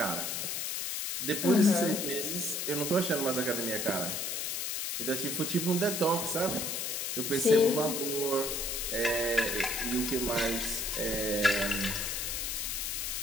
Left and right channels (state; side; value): noise; left; hiss, 2 dB below the sound